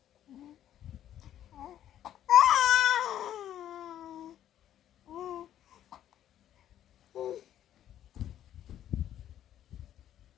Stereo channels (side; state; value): right; quieter; 11.3 dB